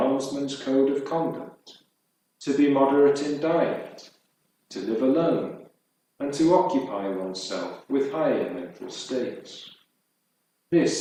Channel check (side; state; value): both; identical; correlation 1.00